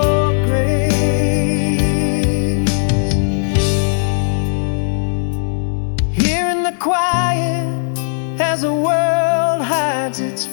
grace. Here in the quiet, as the world hides its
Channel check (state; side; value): silent; right; 68 dB below the other